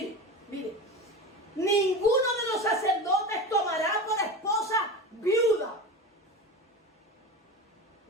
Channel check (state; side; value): normal; both; correlation 0.28